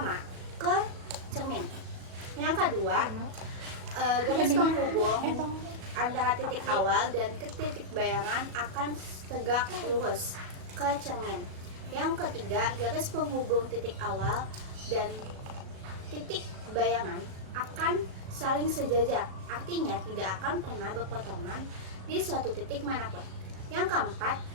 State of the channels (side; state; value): left; late; 37 ms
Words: ke cermin. Yang kedua, garis penghubung antara titik awal dan ke titik bayangan akan tegak lurus ke cermin. Yang ketiga, garis penghubung titik awal dan titik bayangan akan saling sejajar, artinya tidak akan pernah berpotongan di suatu titik manapun. Yang keempat,